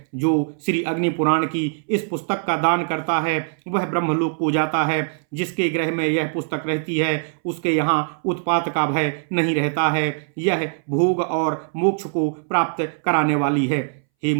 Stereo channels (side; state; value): left; silent; 63 dB below the other